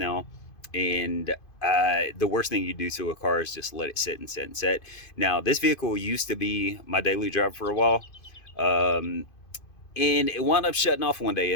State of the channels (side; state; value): right; late; 2.5 ms